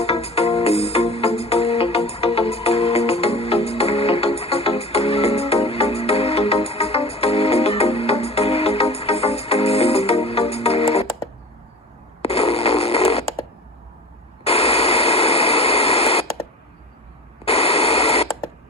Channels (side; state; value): both; normal; correlation 0.36